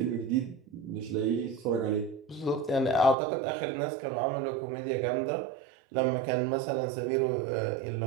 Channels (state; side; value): drops out; left; at 3.2 s